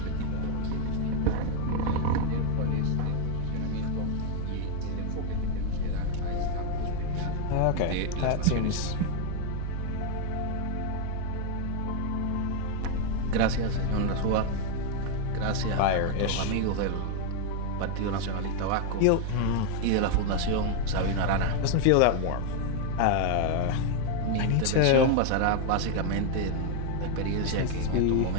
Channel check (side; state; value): both; different; correlation 0.01